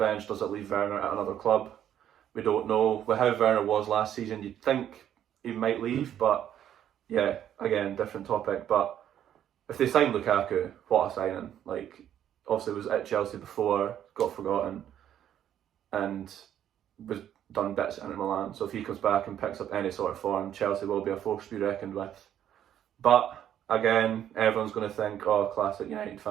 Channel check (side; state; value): left; quieter; 10.5 dB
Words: Does it leave Werner at another club? We don't know. With how Werner was last season, you'd think he might leave, but yeah, again, different topic. But if they sign Lukaku, what a signing. Like, obviously was at Chelsea before, got forgotten, and was done bits at Inter Milan. So if he comes back and picks up any sort of form, Chelsea will be a force to be reckoned with. But again, everyone's going to think, oh, classic United